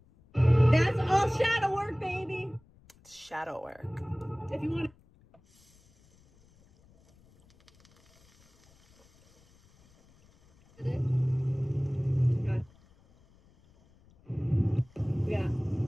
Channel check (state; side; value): noise; left; rumble, 30 dB below the sound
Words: That's all shadow work, baby. It's shadow work. If you want yeah.